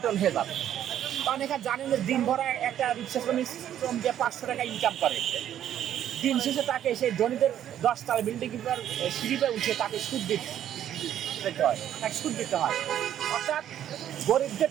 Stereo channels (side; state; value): left; quieter; 10.8 dB